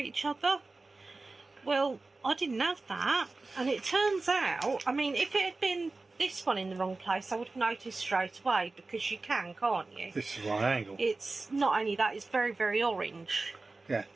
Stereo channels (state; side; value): quieter; left; 3.5 dB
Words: other. Well, I didn't have that, and it turns out, I mean, if it had been this one in the wrong place, I would have noticed straight away, because you can, can't you? This is right angle. It's not only that, it's very, very orange. Yeah.